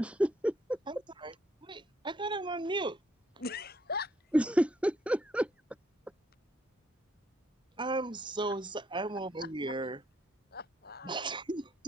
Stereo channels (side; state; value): both; normal; correlation 0.71